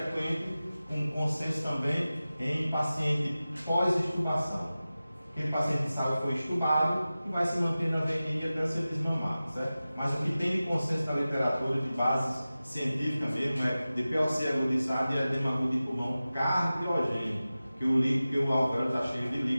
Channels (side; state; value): both; inverted; correlation -0.96